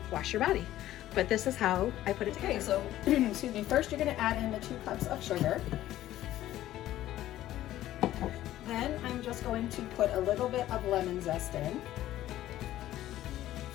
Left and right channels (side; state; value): right; quieter; 13.9 dB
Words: wash your body. But this is how I put it together. Okay, so, excuse me, first you're gonna add in the 2 cups of sugar. Then I'm just going to put a little bit of lemon zest in.